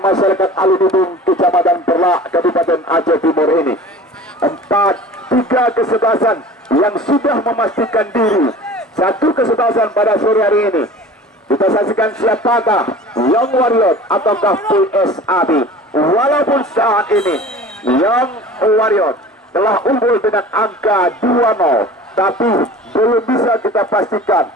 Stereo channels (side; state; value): both; normal; correlation 0.41